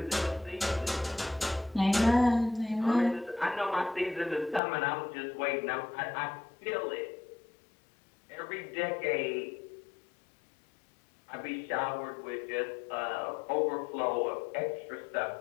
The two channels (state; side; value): drops out; right; at 4.6 s